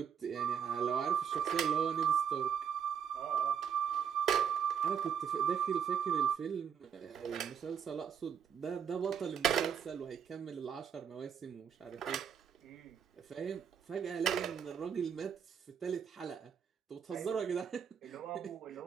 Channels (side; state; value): left; quieter; 7.8 dB